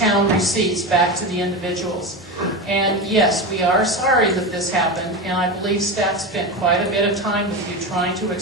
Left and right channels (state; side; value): normal; both; correlation 0.21